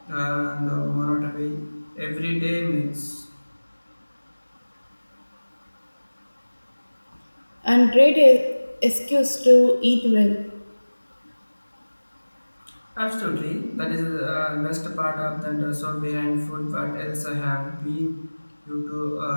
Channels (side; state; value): both; inverted; correlation -1.00